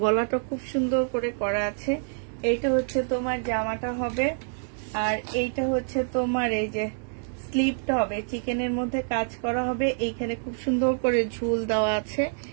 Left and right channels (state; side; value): silent; left; 60 dB below the other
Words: গলাটা খুব সুন্দর করে করা আছে। এইটা হচ্ছে তোমার জামাটা হবে, আর এইটা হচ্ছে তোমার এই যে স্লিপটা হবে, চিকেনের মধ্যে কাজ করা হবে, এইখানে খুব সুন্দর করে ঝুল দেওয়া আছে।